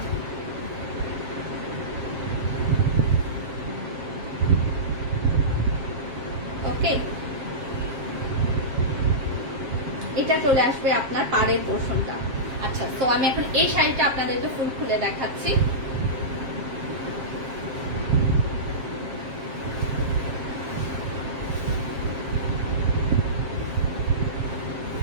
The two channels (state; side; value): late; left; 7.4 ms